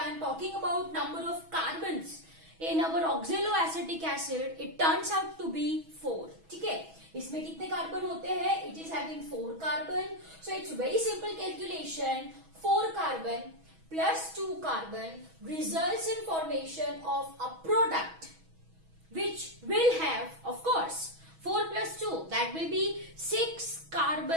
am talking about number of carbons in our oxaloacetic acid, it turns out to be 4. ठीक है? इसमें कितने कार्बन होते हैं? It is having 4 carbon. So it's very simple calculation. 4 carbon plus 2 carbon results in formation of a product which will have, of course, 4 plus 2. That will be 6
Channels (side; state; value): left; late; 6.2 ms